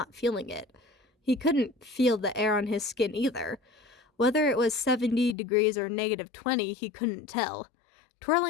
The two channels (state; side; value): drops out; right; at 5.4 s